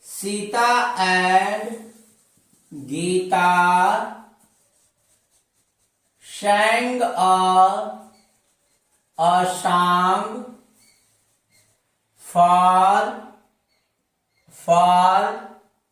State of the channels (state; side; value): identical; both; correlation 1.00